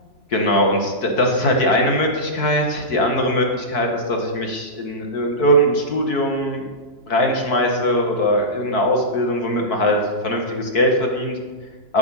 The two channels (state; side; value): late; right; 3.0 ms